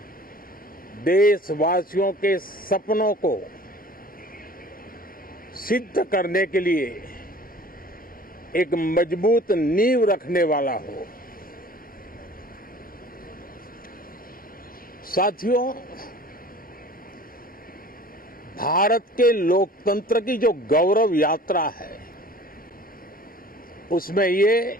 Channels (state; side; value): normal; both; correlation 0.46